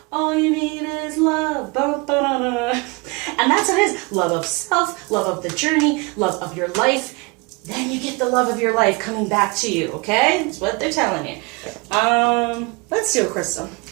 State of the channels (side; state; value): left; quieter; 27.9 dB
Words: all you need is love. And that's what it is. Love of self, love of the journey, love of your life. Then you get the love of your life coming back to you, okay? That's what they're telling you. Let's do a crystal